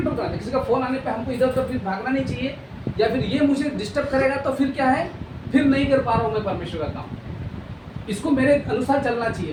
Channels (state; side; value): identical; both; correlation 1.00